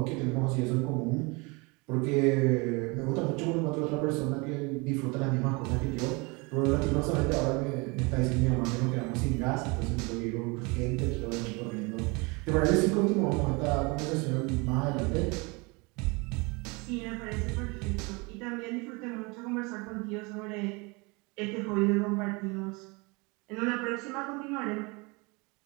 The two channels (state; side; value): quieter; left; 27.9 dB